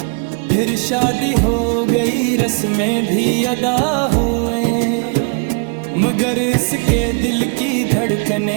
फिर शादी हो गई रस्में भी अदा हुए, मगर इसके दिल की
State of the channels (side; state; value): left; quieter; 35.9 dB